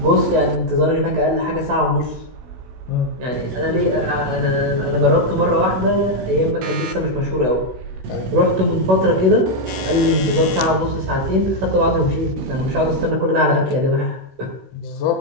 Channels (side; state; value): left; late; 16 ms